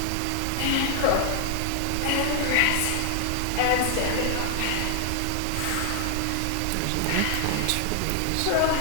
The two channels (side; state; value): both; different; correlation 0.00